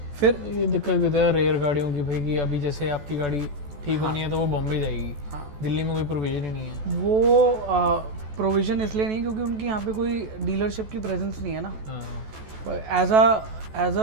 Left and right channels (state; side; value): late; left; 14 ms